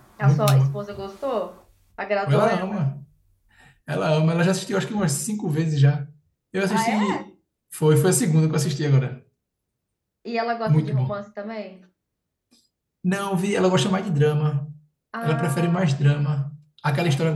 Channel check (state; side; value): identical; both; correlation 1.00